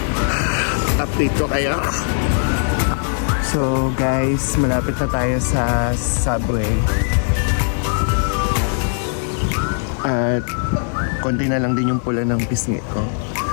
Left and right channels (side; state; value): right; silent; 65 dB below the other